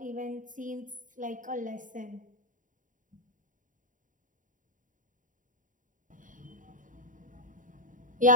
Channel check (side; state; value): left; late; 0.38 ms